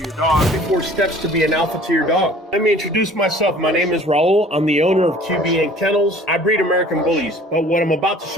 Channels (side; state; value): both; normal; correlation 0.50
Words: dog. 4 steps to be an alpha to your dog. Let me introduce myself. My name is Raul. I'm the owner of QB & Kennels. I breed American Bullies, but what I'm about to